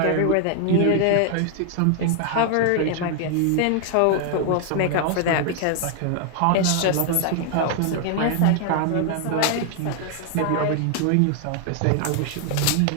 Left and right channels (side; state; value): both; different; correlation 0.00